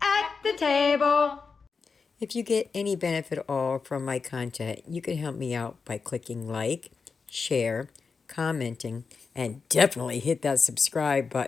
at the table. If you get any benefit at all from my content, you can help me out by clicking like, share, commenting, and definitely hit that subscribe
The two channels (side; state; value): right; quieter; 5.0 dB